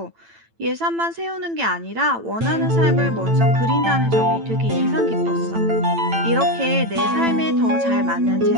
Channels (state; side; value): late; left; 8.9 ms